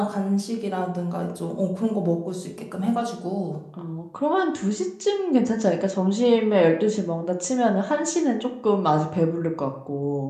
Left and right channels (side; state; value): both; identical; correlation 1.00